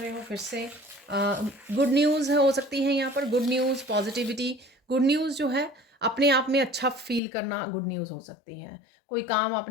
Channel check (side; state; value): right; drops out; at 7.2 s